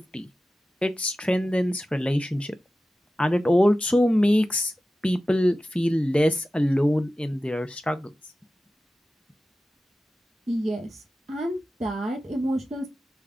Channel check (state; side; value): normal; both; correlation 0.94